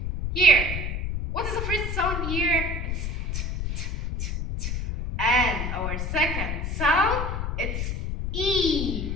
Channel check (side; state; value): left; noise; rumble, 2 dB below the sound